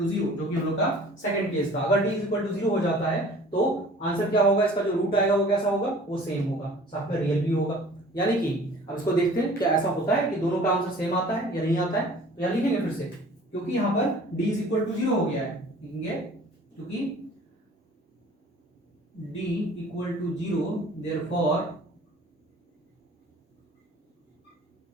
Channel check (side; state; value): both; normal; correlation 0.48